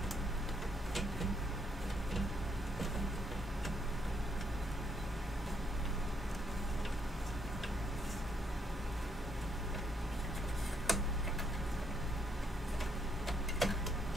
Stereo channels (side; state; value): both; normal; correlation 0.73